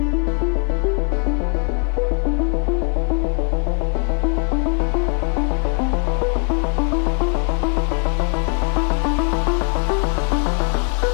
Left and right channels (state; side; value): quieter; right; 39.9 dB